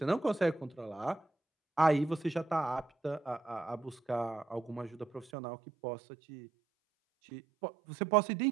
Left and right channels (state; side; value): drops out; left; at 5.3 s